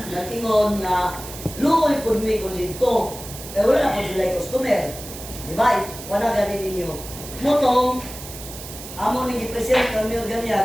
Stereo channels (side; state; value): right; noise; hiss, 12 dB below the sound